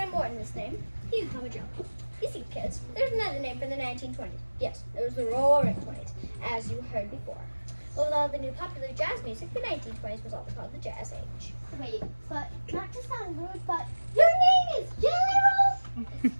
Morton, this name. You can call me Joe. You see, kids, there's another name for the 1920s. Yes, there was the Roaring 20s, as you heard before. But with all the new popular jazz music, the 1920s was also called the Jazz Age. Wait, but not to sound rude, but your name is Jelly Roll?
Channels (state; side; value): inverted; both; correlation -1.00